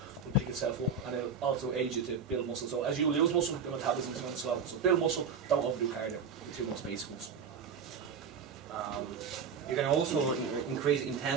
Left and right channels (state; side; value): quieter; left; 5.6 dB